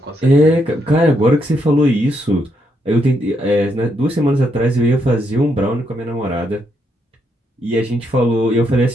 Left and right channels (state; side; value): normal; both; correlation 0.77